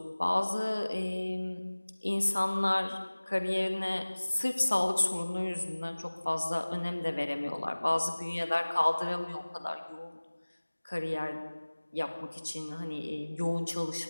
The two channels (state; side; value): inverted; both; correlation -1.00